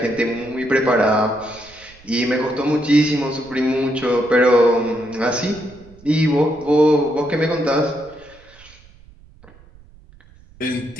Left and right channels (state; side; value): noise; right; rumble, 25 dB below the sound